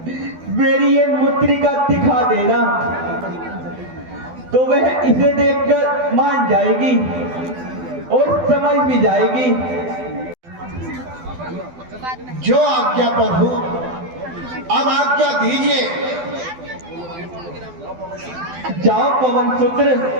मेरी ये मुद्रिका दिखा देना, तो वह इसे देखकर मान जाएगी और समझ भी जाएगी। जो आज्ञा प्रभु, अब आज्ञा दीजिए। जाओ पवन पुत्र,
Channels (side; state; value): left; late; 12 ms